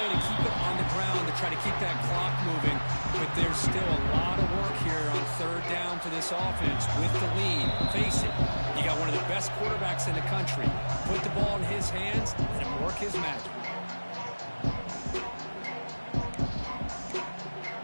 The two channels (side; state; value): both; inverted; correlation -1.00